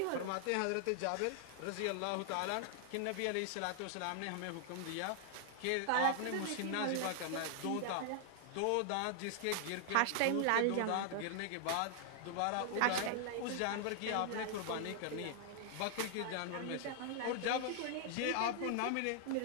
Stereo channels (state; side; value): different; both; correlation 0.00